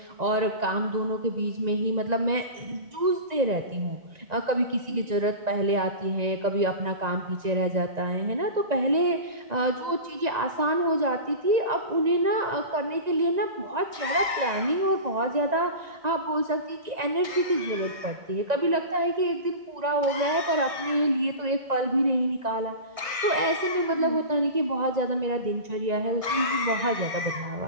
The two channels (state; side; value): late; left; 1.9 ms